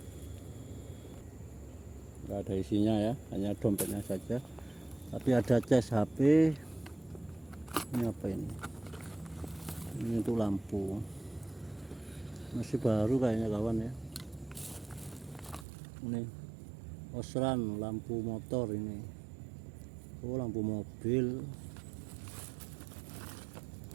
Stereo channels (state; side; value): drops out; left; at 15.7 s